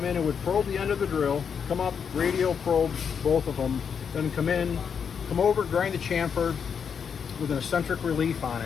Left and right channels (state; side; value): quieter; right; 6.9 dB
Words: in, it would probe the end of the drill, come up, radio probe both of them, then come in, come over, grind the chamfer with an eccentric relief on